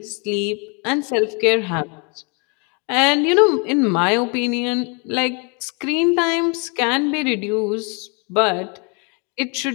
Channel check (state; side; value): quieter; right; 33.7 dB